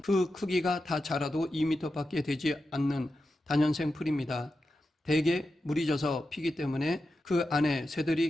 그 크기가 다 자라도 2m밖에 되지 않는 다년생 풀입니다. 대개 물이 져서 피기 때문에 그 안에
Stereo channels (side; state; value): both; normal; correlation 0.90